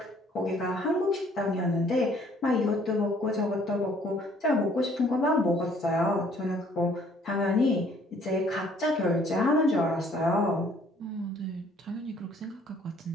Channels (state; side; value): normal; both; correlation 0.60